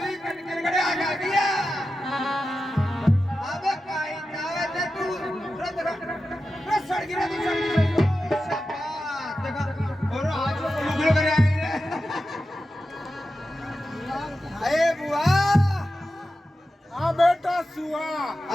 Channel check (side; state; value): both; normal; correlation 0.92